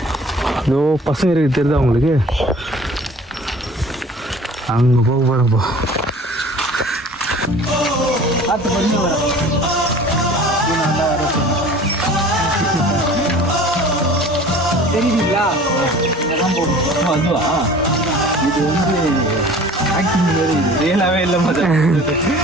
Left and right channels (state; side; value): normal; both; correlation 0.45